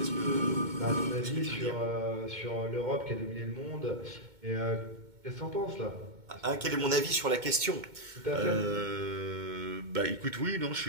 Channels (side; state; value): left; late; 2.2 ms